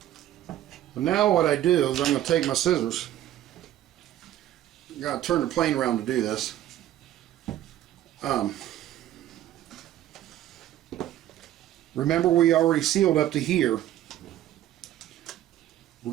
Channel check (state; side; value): quieter; left; 12.6 dB